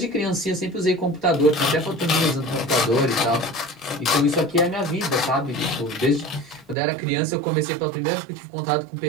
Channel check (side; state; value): left; drops out; at 6.8 s